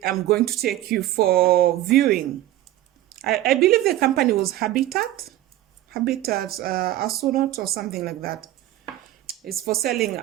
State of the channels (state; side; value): quieter; left; 14.7 dB